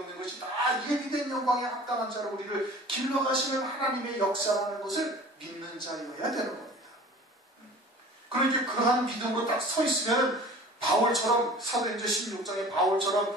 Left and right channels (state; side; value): normal; both; correlation 0.43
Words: 것이 다 예비된 영광에 합당한 자로 우리를 길러가시는 하나님의 역사라는 것을 믿는 자여야 되는 겁니다. 그러니까 그러한 믿음으로 딱 서 있으면 바울처럼, 사도행전 16장의 바울처럼